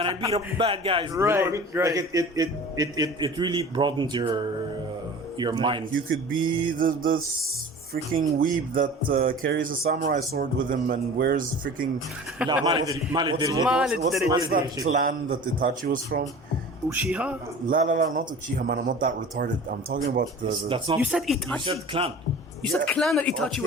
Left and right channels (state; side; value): normal; both; correlation 0.40